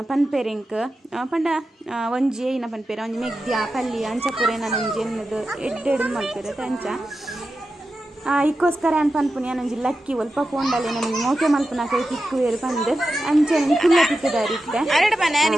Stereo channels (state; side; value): normal; both; correlation 0.91